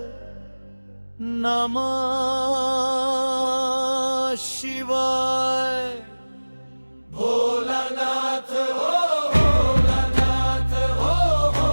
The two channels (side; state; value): both; inverted; correlation -1.00